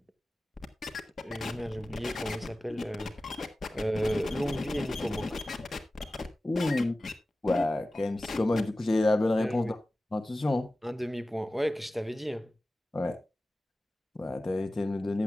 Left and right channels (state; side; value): normal; both; correlation 0.96